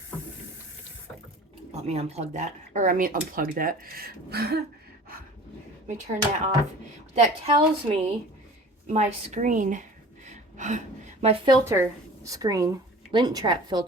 Let me unplug that. Unplug that. Let me turn that off. That tells me my screen, my filter screen, lint trap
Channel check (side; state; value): both; normal; correlation 0.43